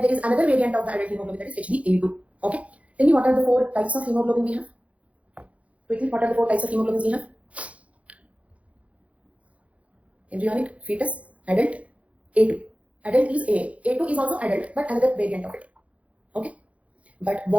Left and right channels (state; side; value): late; left; 0.065 ms